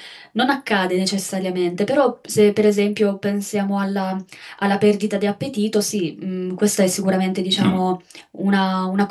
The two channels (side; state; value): both; identical; correlation 1.00